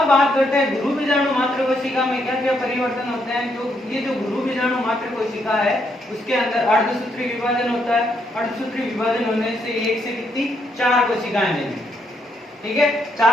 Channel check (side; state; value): both; normal; correlation 0.75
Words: बात करते हैं गुरु बीजाणु मात्र कोशिका में क्या क्या परिवर्तन होते हैं। तो ये जो गुरु बीजाणु मात्र कोशिका है उसके अंदर अर्धसूत्री विभाजन होता है, अर्धसूत्री विभाजन होने से एक से कितनी 4 कोशिकाएं बनेंगी। ठीक है,